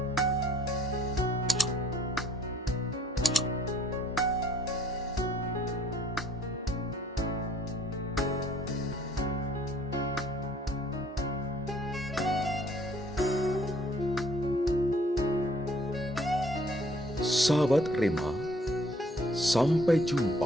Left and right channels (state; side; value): normal; both; correlation 0.60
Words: Sahabat Rema, sampai